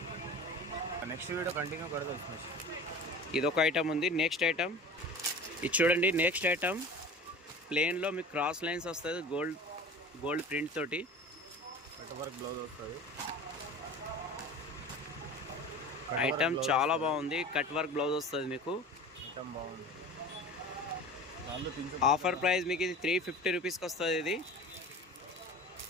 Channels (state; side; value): normal; both; correlation 0.38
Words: నెక్స్ట్ వీడియో కంటిన్యూ కడదాం. ఇదొక ఐటమ్ ఉంది. నెక్స్ట్ ఐటమ్ ఇది చూడండి. నెక్స్ట్ ఐటమ్ ప్లేన్లో మీకు క్రాస్ లైన్స్ వస్తుంది, గోల్డ్ ప్రింట్ తోటి కట్ వర్క్ బ్లౌజ్ వస్తుంది. ఐటమ్ చాలా బాగుంది. కట్ వర్క్ బ్లౌజ్ వస్తుంది మీకు. ఐటమ్ బాగుంది. ఆఫర్ ప్రైస్ మీకు ఇది 350 రూపీస్కి వస్తుంది.